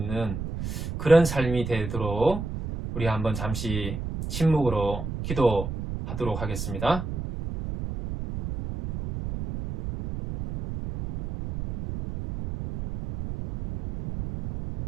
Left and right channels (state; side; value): noise; right; rumble, 6 dB below the sound